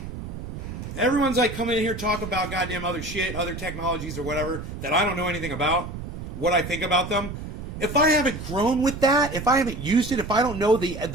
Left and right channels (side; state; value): right; noise; rumble, 8 dB below the sound